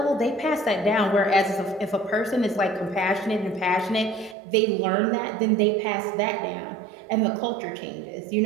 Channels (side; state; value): left; drops out; at 4.4 s